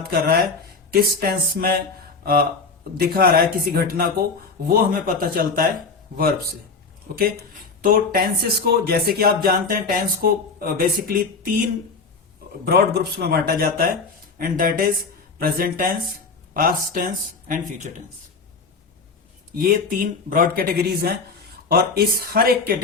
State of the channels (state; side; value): quieter; right; 4.4 dB